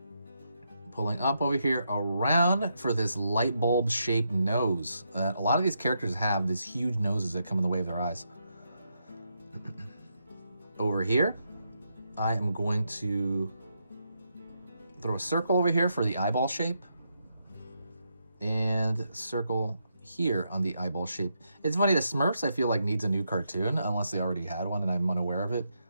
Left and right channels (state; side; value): inverted; both; correlation -0.81